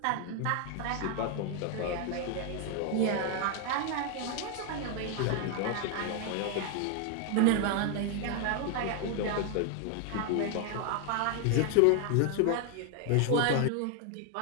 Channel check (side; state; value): both; different; correlation 0.00